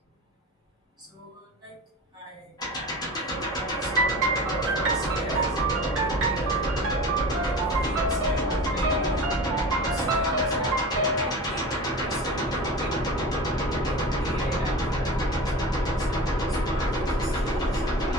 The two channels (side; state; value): both; normal; correlation 0.33